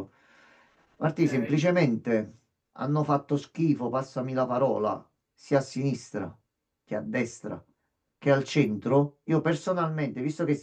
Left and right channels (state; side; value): identical; both; correlation 1.00